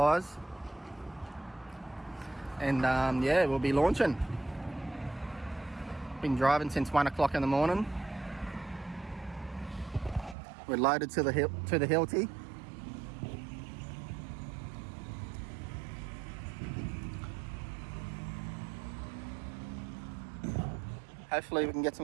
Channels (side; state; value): left; drops out; at 10.4 s